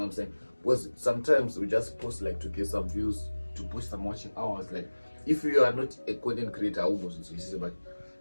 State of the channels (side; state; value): both; inverted; correlation -1.00